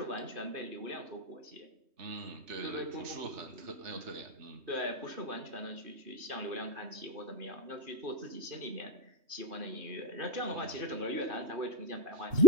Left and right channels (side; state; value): left; late; 3.2 ms